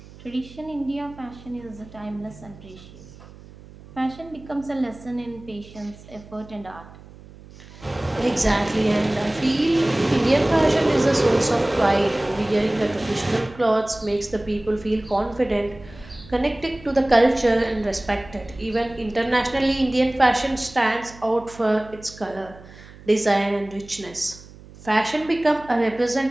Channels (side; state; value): right; noise; hum, 20 dB below the sound